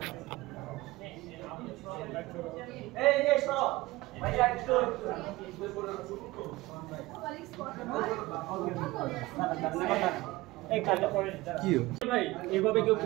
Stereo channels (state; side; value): quieter; left; 19.9 dB